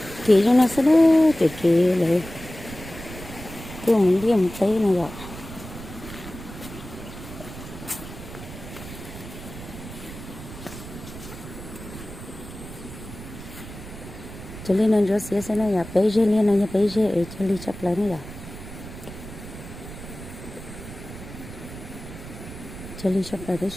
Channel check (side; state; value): right; noise; rumble, 13 dB below the sound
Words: kỹ cho nó sẽ đó kỹ lại tôi muốn đi một tí này rồi cho nên nó rất sẽ nó là bây giờ liên nó bây giờ ở cho đi chấp lấy này rồi cho đi chấp lấy cái